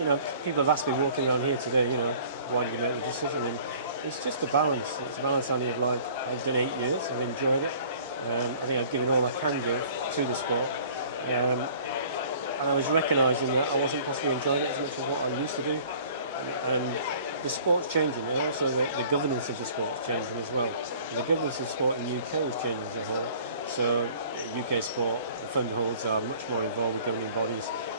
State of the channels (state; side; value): inverted; both; correlation -0.50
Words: know, people have asked me walking around here today, you know, why did you make the decision? And it's just a balance. It's a balance only of like, I've done 8 years, I've enjoyed it. I think I've given all I can give to the sport. And I was recognising that I wasn't possibly enjoying it as much as what I used to do. And the sport's changing, and also the governance of the sport's changing as well. And the governance of the sport in the UK is changing as a whole. So UK sport, the fund holds are much more involved with governing bodies.